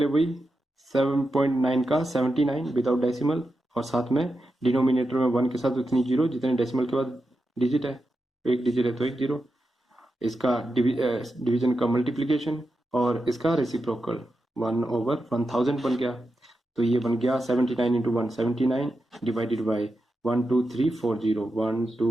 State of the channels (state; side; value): normal; both; correlation 0.89